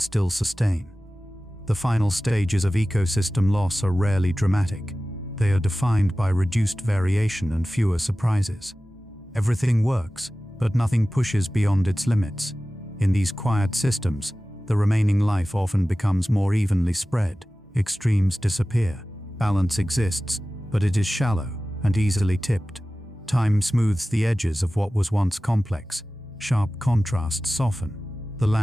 sustain. The final stages of ecosystem loss are rarely dramatic. They are defined by reduced variation and fewer surprises. Everything works, but nothing pushes beyond its limits. In these quiet systems, the remaining life often becomes more evenly spread. Extremes disappear. Balance exists, but it is shallow and easily tipped. Time smooths the edges of what was once complex. Sharp contrasts soften. The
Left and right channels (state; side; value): normal; both; correlation 0.96